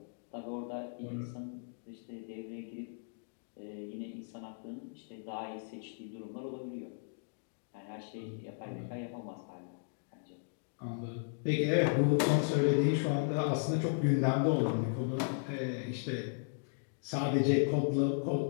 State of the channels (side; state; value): right; silent; digital silence